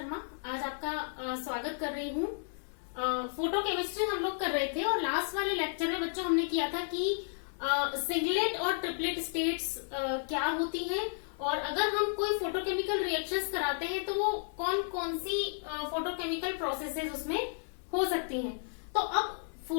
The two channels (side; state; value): right; silent; digital silence